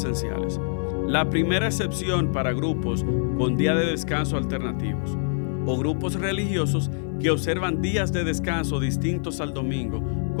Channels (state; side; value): silent; right; 62 dB below the other